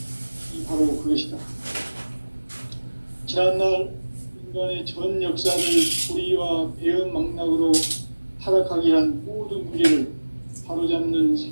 바로 그것이다. 지난날 인간의 전 역사를 불의와 배은 망락으로 타락하게 한 모든 문제를 바로잡는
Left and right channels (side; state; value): both; inverted; correlation -1.00